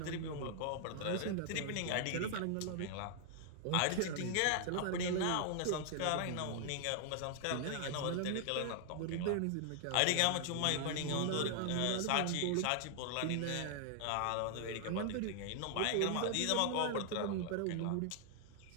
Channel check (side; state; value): both; different; correlation 0.00